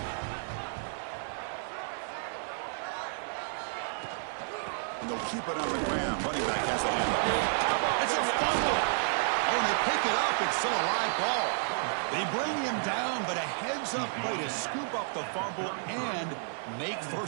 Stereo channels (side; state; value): left; silent; 57 dB below the other